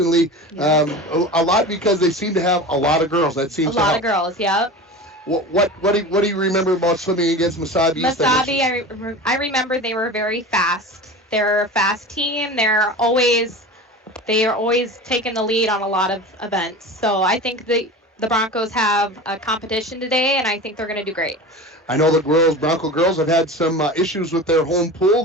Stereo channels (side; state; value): both; normal; correlation 0.32